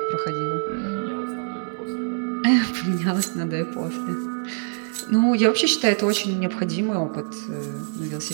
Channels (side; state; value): left; silent; 61 dB below the other